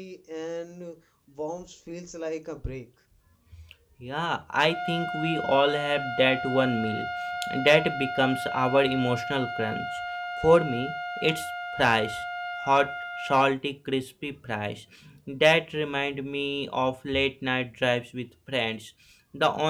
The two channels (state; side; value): identical; both; correlation 1.00